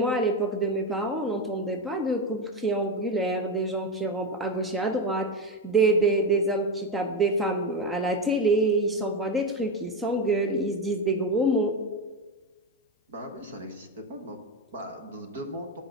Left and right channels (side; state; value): both; normal; correlation 0.14